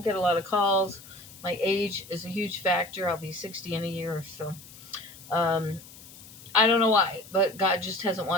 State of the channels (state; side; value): noise; left; hiss, 19 dB below the sound